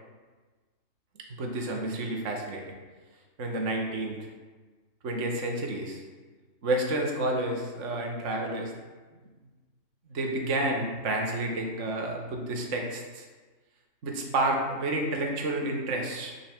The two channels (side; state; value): left; late; 3.5 ms